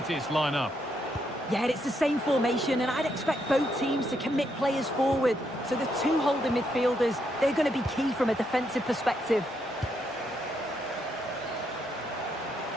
line up. Yeah, it's the same formation and I'd expect both teams to commit players forward. So the two holding midfielders, they're going to be key from a defensive perspective.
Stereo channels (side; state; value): both; normal; correlation 0.77